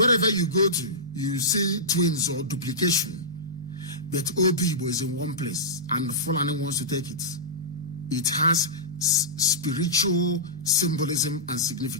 you go to, you see twins or duplication. But Obibo is in one place and Fulani wants to take it. It has spiritual symbolism and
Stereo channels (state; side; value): normal; both; correlation -0.16